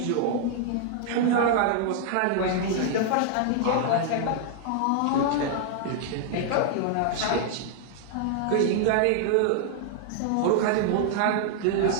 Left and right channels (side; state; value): both; different; correlation 0.00